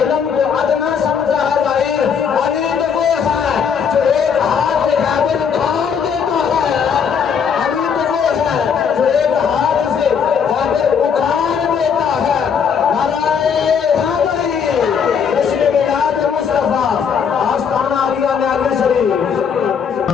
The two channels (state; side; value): quieter; right; 6.9 dB